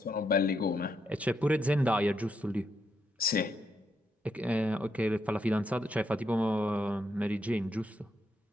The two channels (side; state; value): both; normal; correlation 0.79